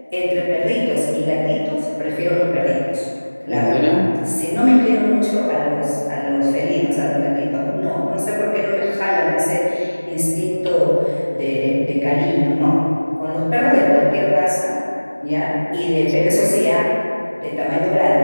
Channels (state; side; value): inverted; both; correlation -1.00